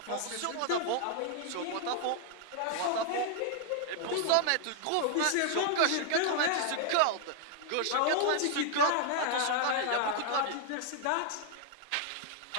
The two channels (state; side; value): different; both; correlation 0.00